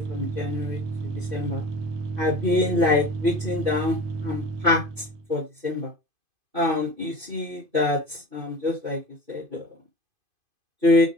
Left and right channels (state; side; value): late; left; 2.5 ms